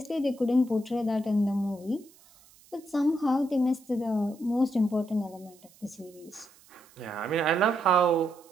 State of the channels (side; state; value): right; noise; hiss, 27 dB below the sound